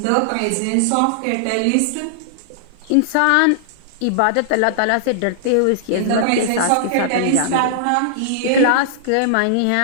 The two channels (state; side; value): different; both; correlation -0.01